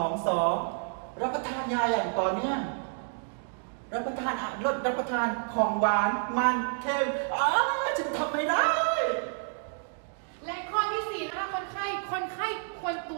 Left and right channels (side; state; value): left; silent; 58 dB below the other